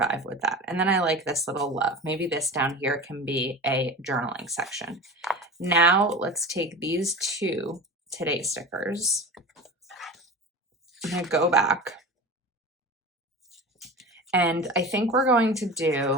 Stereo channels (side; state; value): both; normal; correlation 0.33